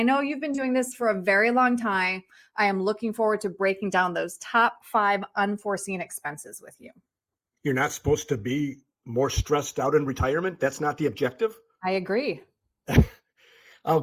know you've been doing this for a very long time. I am looking forward to breaking down those top 5 unforeseen expenses with you. You're not supposed to be more stressed out in retirement. That's not the objective. I agree. Oh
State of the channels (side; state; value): both; identical; correlation 1.00